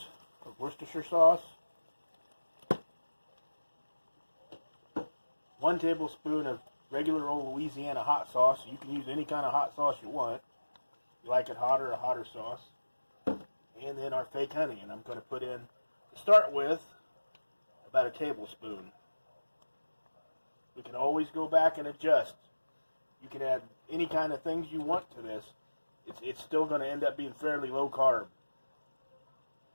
of Worcestershire sauce, 1 tablespoon of regular old Louisiana hot sauce. You can use any kind of hot sauce you want. You like it hotter, a hotter sauce. And then our fake honey, and I'm going to put in, to start with, about a tablespoon. We can always go back and adjust. You can add any kind of things you want to this. It's still going to end up being fairly low carb.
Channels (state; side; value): inverted; both; correlation -1.00